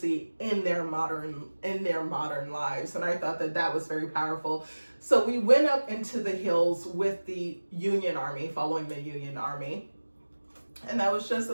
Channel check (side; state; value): both; inverted; correlation -1.00